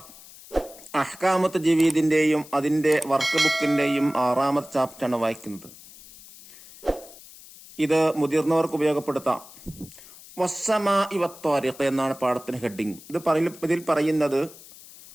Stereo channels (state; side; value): noise; left; hiss, 20 dB below the sound